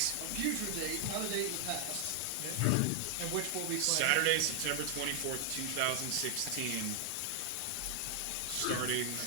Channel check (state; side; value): different; both; correlation 0.00